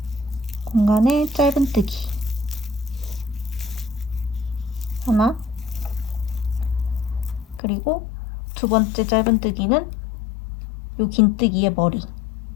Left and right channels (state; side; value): drops out; right; at 7.6 s